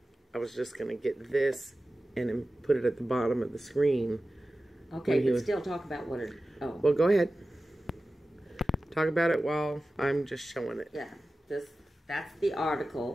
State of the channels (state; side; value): normal; both; correlation 0.95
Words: I was just going to get this and then put it at the bottom of the screen. Okay, but still talk about what it... Oh. Well, go ahead. Talk about it while I'm just showing it. Yeah, that's the